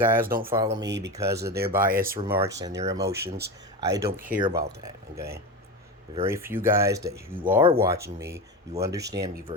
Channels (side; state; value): both; normal; correlation 0.22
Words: don't follow me because of their biased remarks and their emotions, I don't care about that. Okay, very few guys that you are watching me, you understand me